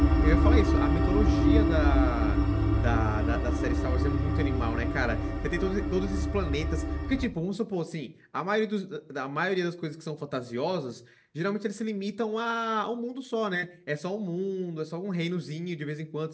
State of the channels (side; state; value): both; identical; correlation 1.00